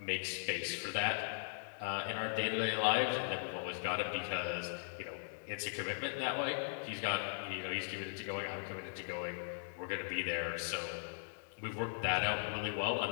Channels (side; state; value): right; silent; digital silence